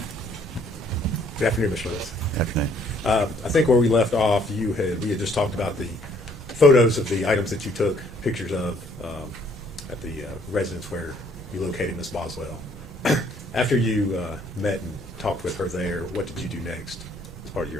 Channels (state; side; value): normal; both; correlation 0.63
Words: Good afternoon, Mr. Lewis. Afternoon. I think where we left off, we had just talked about the photos of the items that you took pictures of at the residence where you located Miss Boswell. After you met and talked with her there, what did you do next as part of